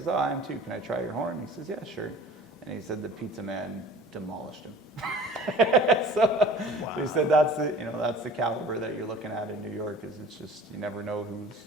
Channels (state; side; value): normal; both; correlation 0.45